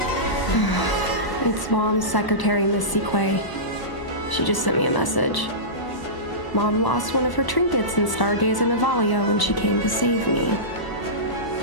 It's Mom's secretary, Miss Siquei. She just sent me a message. Mom lost one of her trinkets in Stargazer Navalia when she came to save me.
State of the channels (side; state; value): right; late; 1.0 ms